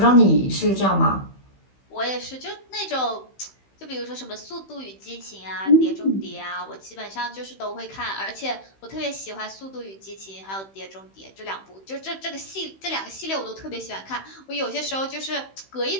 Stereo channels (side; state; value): right; late; 15 ms